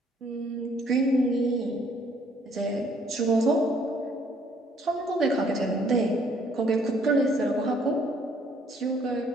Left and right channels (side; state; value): both; normal; correlation 0.63